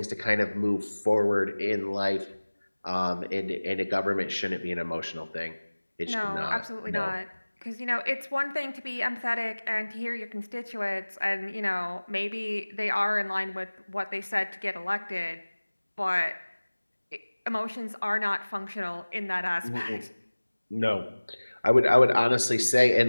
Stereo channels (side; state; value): both; inverted; correlation -1.00